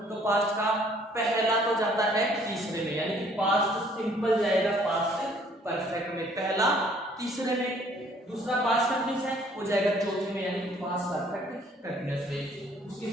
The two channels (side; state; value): both; normal; correlation 0.59